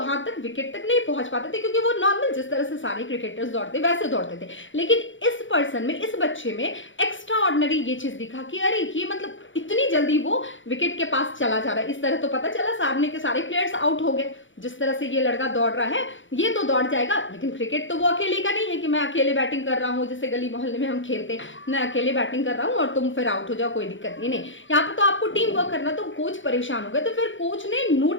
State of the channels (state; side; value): late; right; 0.56 ms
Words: तक विकेट तक नहीं पहुंच पाते थे, क्योंकि वो नॉर्मल जिस तरह से सारे क्रिकेटर्स दौड़ते वैसे दौड़ते थे। लेकिन इस पर्सन में, इस बच्चे में एक्स्ट्रा ऑर्डिनरी ये चीज दिखा कि अरे ये मतलब इतनी जल्दी वो विकेट के पास चला जा रहा है। इस तरह तो पता चला सामने के सारे प्लेयर्स आउट हो गए, जिस तरह से ये लड़का दौड़ रहा है ये तो दौड़ जाएगा, लेकिन क्रिकेट तो वो अकेले का नहीं है कि मैं अकेले बैटिंग कर रहा हूँ, जैसे गली मोहल्ले में हम खेलते हैं, मैं अकेले बैटिंग कर रहा हूँ और तुम फिर आउट हो जाओ, कोई दिक्कत नहीं। यहाँ पर तो आपको टीम वर्क करना। तो कोच परेशान हो गए, तो फिर कोच ने